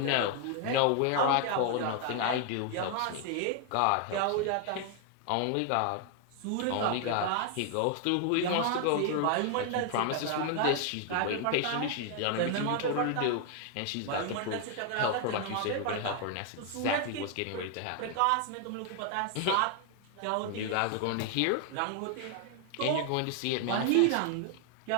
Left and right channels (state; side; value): different; both; correlation 0.00